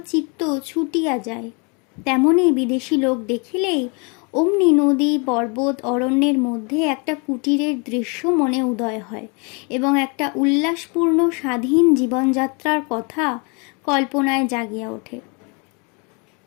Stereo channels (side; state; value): right; quieter; 33.2 dB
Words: চিত্ত ছুটিয়া যায়। তেমনই বিদেশি লোক দেখিলেই অমনি নদী, পর্বত, অরণ্যের মধ্যে একটা কুটিরের দৃশ্য মনে উদয় হয় এবং একটা উল্লাসপূর্ণ স্বাধীন জীবনযাত্রার কথা কল্পনায় জাগিয়া ওঠে।